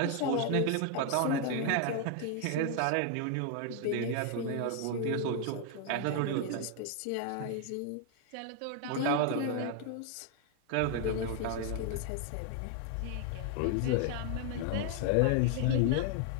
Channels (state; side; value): different; both; correlation 0.00